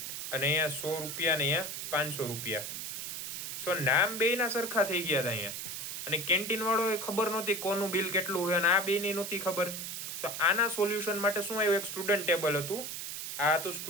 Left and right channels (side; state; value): right; noise; hiss, 6 dB below the sound